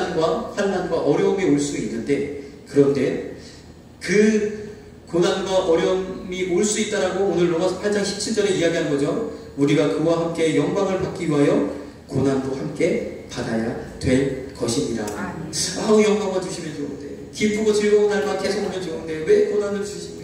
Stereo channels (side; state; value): both; identical; correlation 1.00